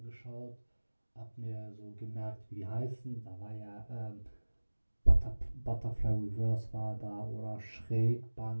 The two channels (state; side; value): inverted; both; correlation -1.00